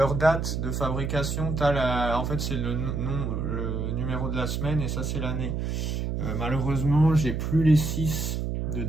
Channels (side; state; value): right; noise; hum, 2 dB below the sound